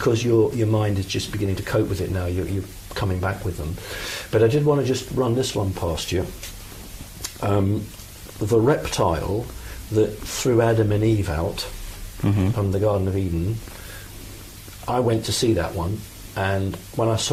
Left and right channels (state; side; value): identical; both; correlation 1.00